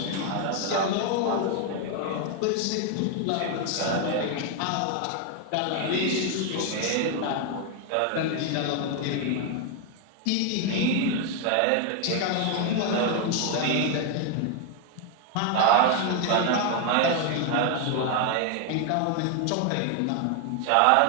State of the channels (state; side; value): different; both; correlation 0.01